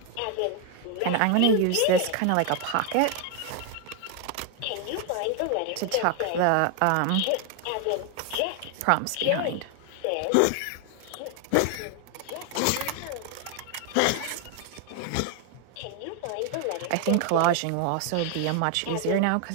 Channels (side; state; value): both; different; correlation 0.00